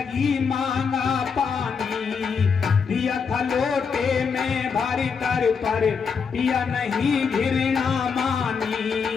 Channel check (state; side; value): quieter; right; 5.9 dB